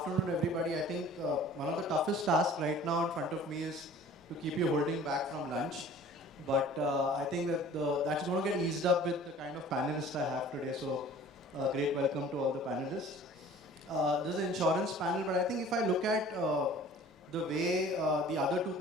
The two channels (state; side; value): normal; both; correlation 0.47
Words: everybody. I think one of the toughest tasks right now in front of me is to keep you holding back from lunch. But I think that that's going to get eased up with the kind of panelists I have today. So great welcome to all the panelists. This is an insurance panel, but I think if I look at the way the other two